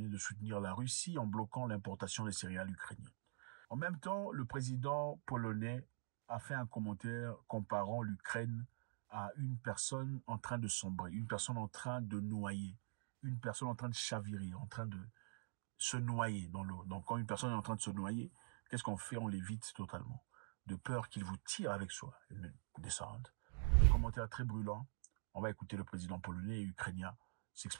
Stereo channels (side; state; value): left; silent; digital silence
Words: de soutenir la Russie en bloquant l'importation des céréales ukrainiennes. En même temps, le président polonais a fait un commentaire comparant l'Ukraine à une personne en train de sombrer, une personne en train de noyer, une personne en train de chavirer, en train de se noyer dans l'eau. Donc quand une personne est en train de se noyer, qu'est-ce qu'on fait? On l'évite totalement, de peur qu'il vous tire avec soi, une descente. Un commentaire très brûlant. On va écouter le président polonais et ukrainien